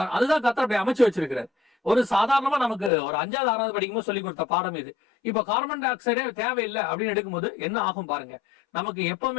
அதுதான் கர்த்தர் அப்படி அமைச்சு வச்சிருக்கிறார். ஒரு சாதாரணமா நமக்கு ஒரு 5வது 6வது படிக்கும்போது சொல்லி கொடுத்த பாடம் இது. இப்ப கார்பன் டை ஆக்சைடே தேவையில்லை அப்படின்னு எடுக்கும்போது என்ன ஆகும் பாருங்க. நமக்கு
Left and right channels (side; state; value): right; drops out; at 2.9 s